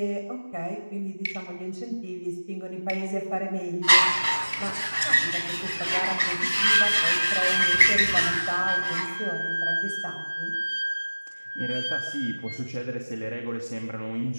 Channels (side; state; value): both; inverted; correlation -1.00